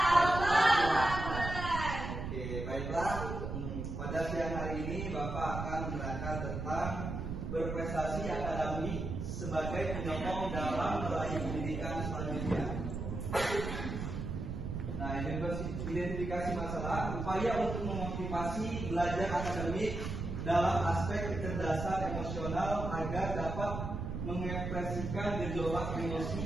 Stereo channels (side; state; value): right; noise; rumble, 5 dB below the sound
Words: Oke, baiklah. Pada siang hari ini Bapak akan menerangkan tentang berprestasi akademik sebagai penyokong dalam meraih pendidikan selanjutnya. Nah, identifikasi masalah, upaya untuk memotivasi belajar akademik dalam aspek kecerdasan emosional agar dapat mengekspresikan gejolak